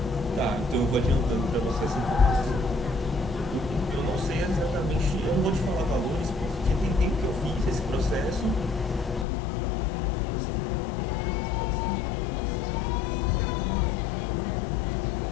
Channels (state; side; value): drops out; right; at 9.2 s